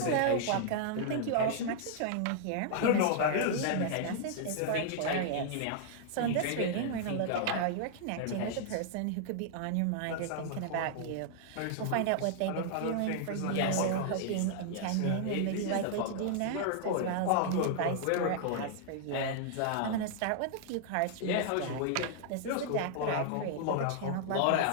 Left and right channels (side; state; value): both; different; correlation -0.01